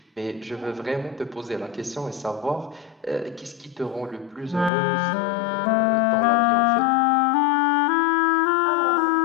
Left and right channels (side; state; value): right; drops out; at 4.7 s